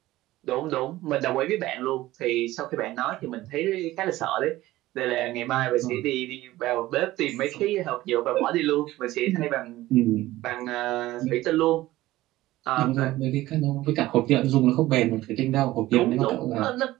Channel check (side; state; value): left; quieter; 16.7 dB